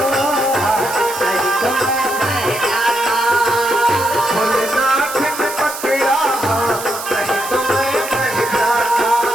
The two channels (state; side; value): noise; right; hiss, 9 dB below the sound